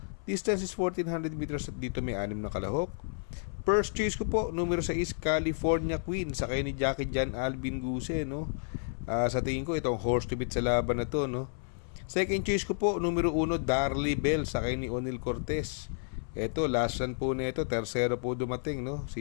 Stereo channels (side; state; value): right; silent; 55 dB below the other